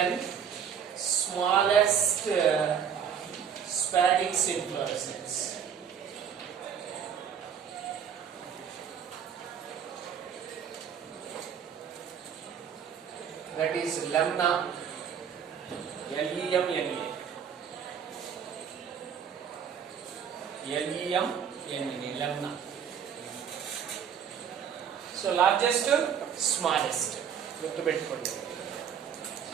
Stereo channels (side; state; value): left; quieter; 7.9 dB